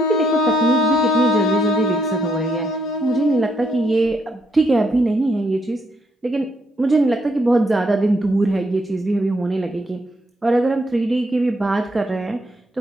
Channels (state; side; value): normal; both; correlation 0.74